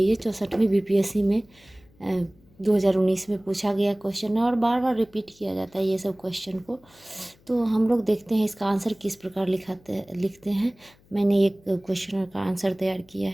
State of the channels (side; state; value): left; noise; hum, 30 dB below the sound